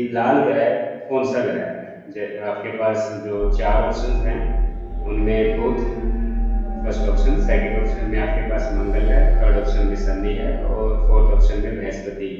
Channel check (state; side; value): identical; both; correlation 1.00